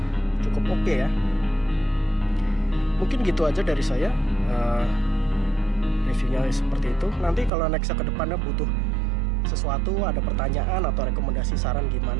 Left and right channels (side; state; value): left; drops out; at 7.5 s